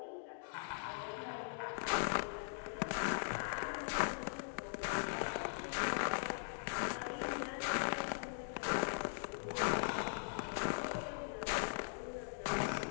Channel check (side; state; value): right; silent; digital silence